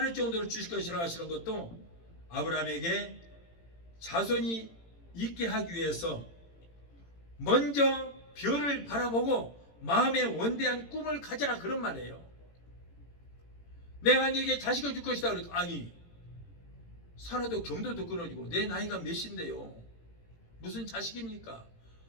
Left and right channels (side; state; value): right; late; 18 ms